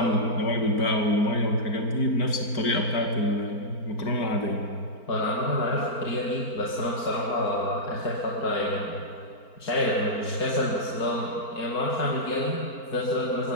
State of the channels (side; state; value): right; late; 4.4 ms